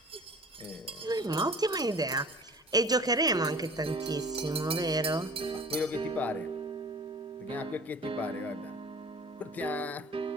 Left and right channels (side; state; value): both; normal; correlation 0.45